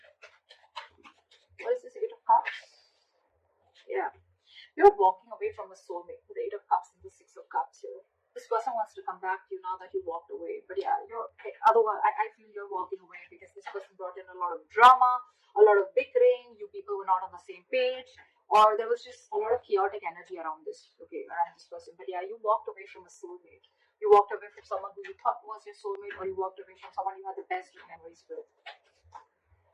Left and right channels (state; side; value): identical; both; correlation 1.00